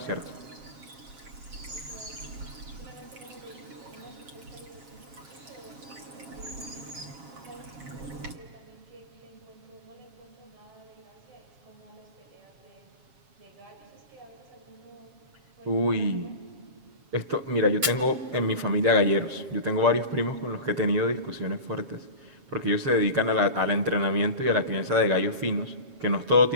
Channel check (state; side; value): late; left; 7.3 ms